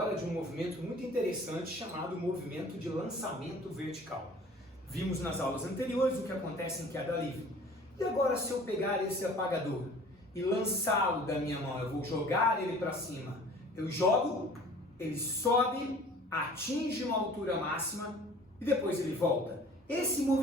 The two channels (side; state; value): both; normal; correlation 0.48